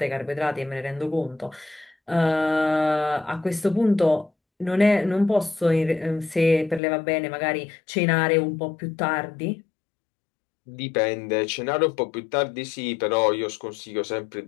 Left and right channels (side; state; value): right; drops out; at 6.8 s